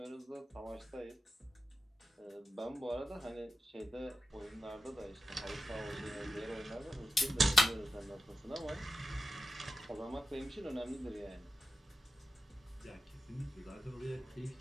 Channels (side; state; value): both; normal; correlation 0.92